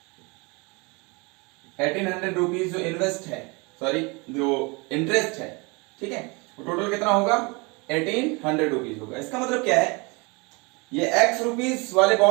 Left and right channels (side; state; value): left; quieter; 28.2 dB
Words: 1800 रुपीज जो इन्वेस्ट है, सॉरी जो इंटरेस्ट है, ठीक है, वो टोटल कितना होगा, 1800 रुपीज होगा। इसका मतलब क्या है, ये x रुपीज वाले